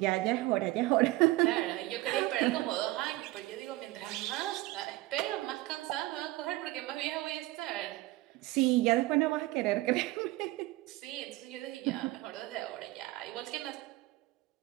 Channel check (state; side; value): quieter; left; 19.0 dB